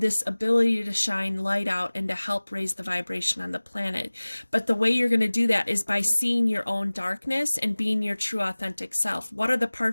this ability to shine light out and to help raise the vibration on the planet. But the way you're going to do that is by seeing your own darkness and being your true authentic self. What are the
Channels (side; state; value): both; inverted; correlation -1.00